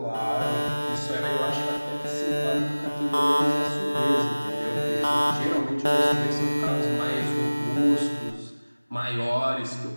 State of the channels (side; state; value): both; inverted; correlation -1.00